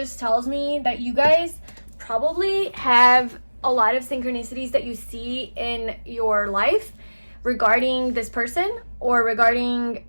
tells me that you guys probably have a lot of synchronicities that you see in your life regarding this person, or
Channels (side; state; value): both; inverted; correlation -1.00